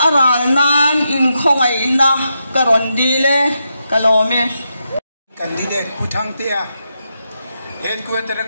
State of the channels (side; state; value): both; inverted; correlation -0.85